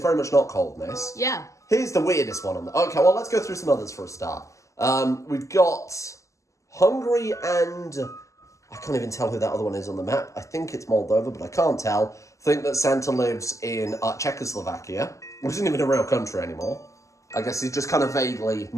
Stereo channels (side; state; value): right; late; 0.15 ms